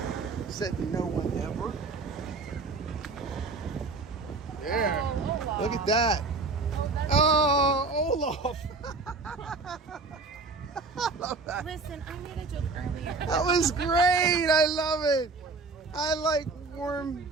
Said no one ever. There. Oh, Look at that. Oh, Olaf. I love that. Listen, I made a joke earlier. That was great. I love it. I like warm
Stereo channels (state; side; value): quieter; left; 3.9 dB